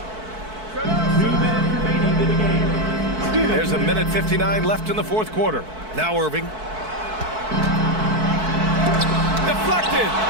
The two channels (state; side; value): late; left; 4.6 ms